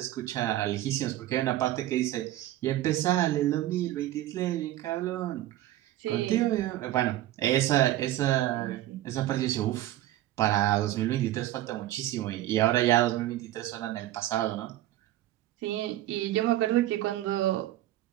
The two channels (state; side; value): quieter; left; 14.6 dB